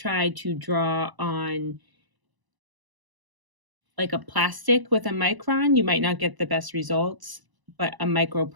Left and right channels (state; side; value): late; left; 1.0 ms